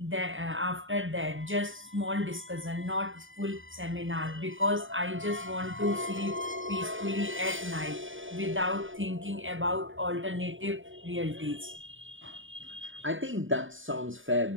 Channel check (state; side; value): late; left; 0.57 ms